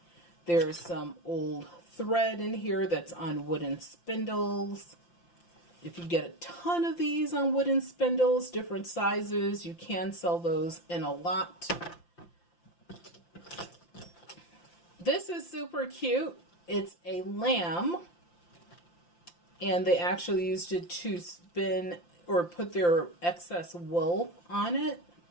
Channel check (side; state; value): right; late; 5.8 ms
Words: There's some old thread in here that's on wooden spindles. If you get a ton of these on wooden spindles, different sizes, you can sell those in a lot. This is super cute. It's a lamb, and they actually used it to spin or put their excess wool on it.